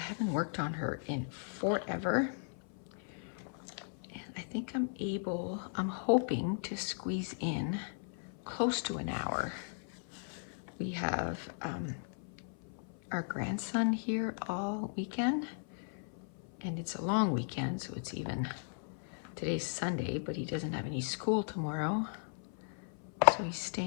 worked on her in forever. And I think I'm hoping to squeeze in close to an hour. We have our grandson here all weekend. And it's a long weekend, so it's even, today's Sunday, but he doesn't have any school tomorrow. So he's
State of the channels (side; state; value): right; silent; 53 dB below the other